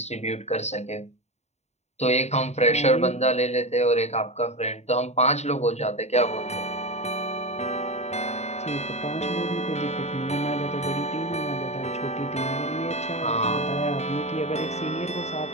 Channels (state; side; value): late; right; 0.32 ms